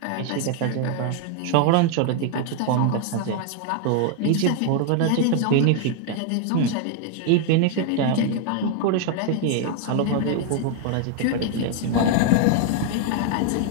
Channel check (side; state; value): both; different; correlation 0.00